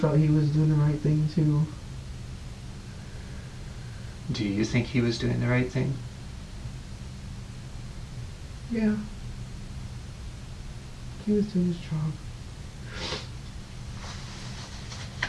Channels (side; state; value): both; identical; correlation 1.00